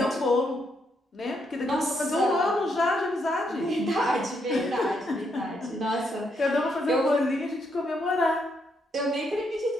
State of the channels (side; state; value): both; normal; correlation 0.77